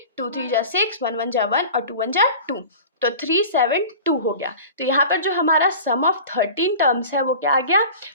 2 3 जा 6, 1 1 जा 1 और 2 1 जा 2, तो 372 हो गया। तो यहाँ पर जो हमारा सम ऑफ 13 टर्म्स है वो क्या आ गया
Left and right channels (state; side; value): inverted; both; correlation -0.38